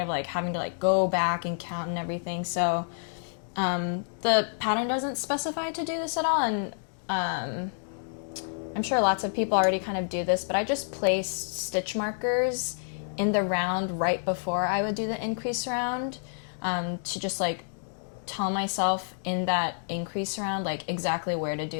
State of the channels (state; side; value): silent; right; digital silence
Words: like having to like go back and count and everything. So the pattern doesn't specify to do this at all, and I'm sure lots of people already kind of do this, but I just placed stitch markers in the round right before I would do the increase round to just like tell myself in that increase round like exactly where to